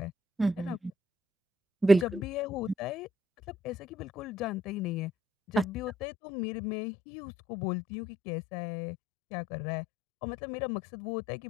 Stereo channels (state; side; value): drops out; right; at 5.9 s